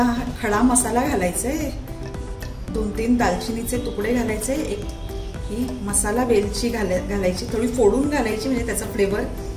खडा मसाला घालायचा आहे। 2-3 दालचिनीचे तुकडे घालायचे, एक ही मसाला वेलची घालायची, थोडी फोडून घालायची म्हणजे त्याचा फ्लेवर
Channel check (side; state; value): both; identical; correlation 1.00